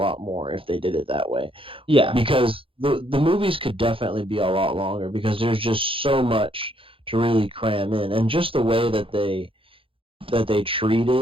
more if they did it that way, Yeah. because the movies could definitely be a lot longer because there's just so much to really cram in, and just the way that they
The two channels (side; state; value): left; late; 0.26 ms